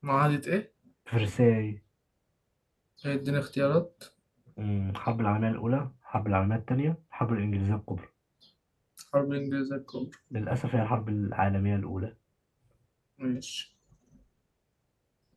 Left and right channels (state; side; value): identical; both; correlation 1.00